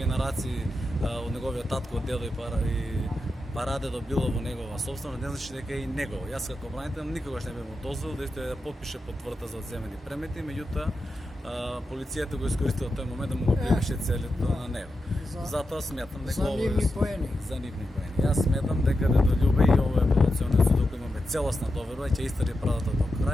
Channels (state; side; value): normal; both; correlation 0.89